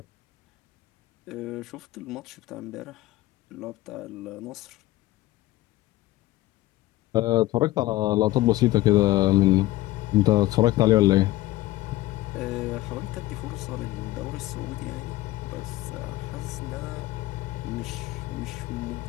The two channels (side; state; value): right; quieter; 17.1 dB